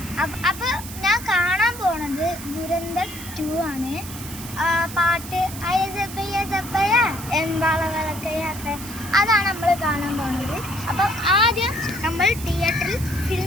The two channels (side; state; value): right; noise; hiss, 12 dB below the sound